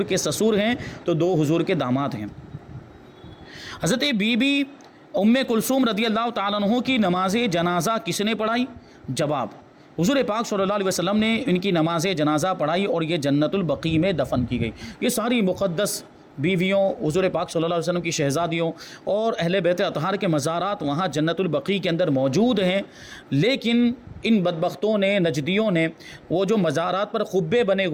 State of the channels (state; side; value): identical; both; correlation 1.00